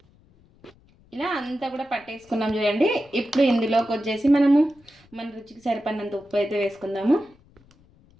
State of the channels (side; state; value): left; noise; rumble, 30 dB below the sound